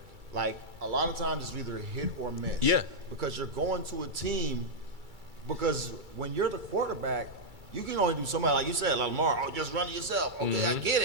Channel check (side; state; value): left; late; 2.3 ms